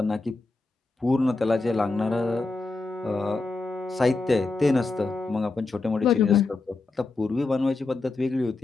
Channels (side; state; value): right; quieter; 3.4 dB